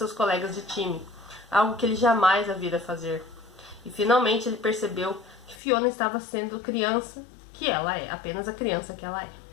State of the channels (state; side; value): drops out; right; at 5.6 s